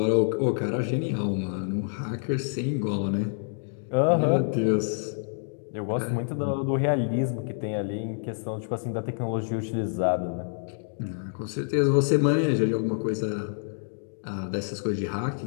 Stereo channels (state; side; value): silent; right; digital silence